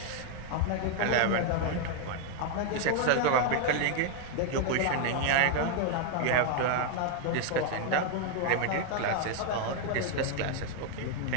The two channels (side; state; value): both; different; correlation 0.00